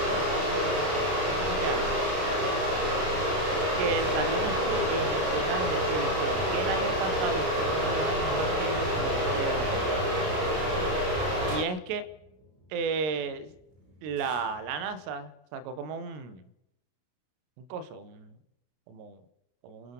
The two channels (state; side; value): late; left; 32 ms